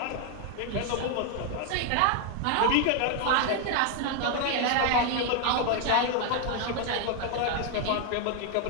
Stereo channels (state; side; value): different; both; correlation 0.01